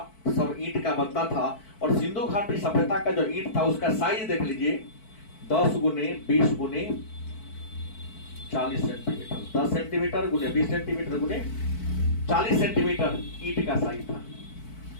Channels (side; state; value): right; late; 4.5 ms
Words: सब ईंट का बनता था। और सिंधु घाटी सभ्यता का जो ईंट था, उसका साइज देख लीजिए, 10 गुने 20 गुने 40 सेंटीमीटर, 10 सेंटीमीटर गुने 20 सेंटीमीटर गुने 40 सेंटीमीटर ईंट का साइज था।